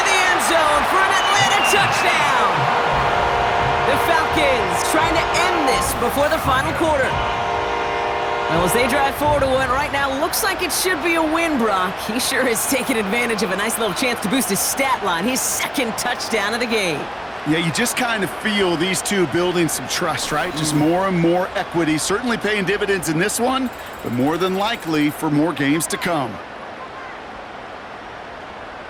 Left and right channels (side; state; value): both; identical; correlation 1.00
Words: the end zone for an Atlanta touchdown. The Falcons trying to end this before the final quarter. Well, as they drive forward to what right now looks like it should be a win, Brock. He sure has taken advantage of a nice little chance to boost his stat line. His second touchdown of the game. Yeah, you just kind of feel these two building some trust, right? Just more and more equity. Certainly paying dividends in this one, but more than likely for more games to come.